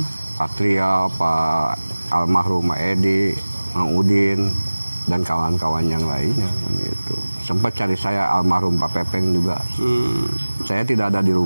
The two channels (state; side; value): inverted; both; correlation -1.00